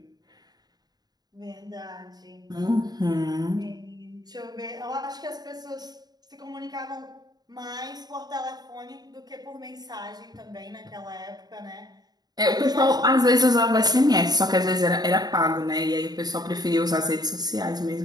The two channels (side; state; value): left; late; 0.19 ms